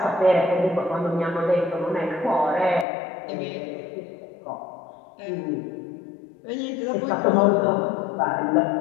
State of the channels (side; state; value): right; drops out; at 2.9 s